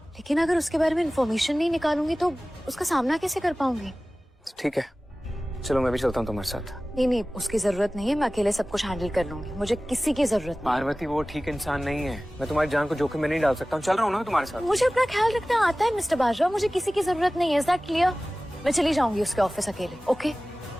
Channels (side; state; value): both; normal; correlation 0.97